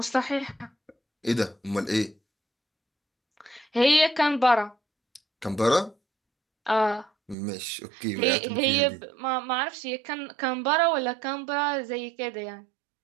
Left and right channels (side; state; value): left; drops out; at 7.4 s